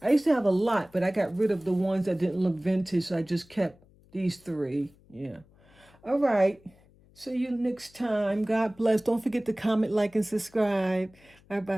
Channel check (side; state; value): left; noise; hum, 29 dB below the sound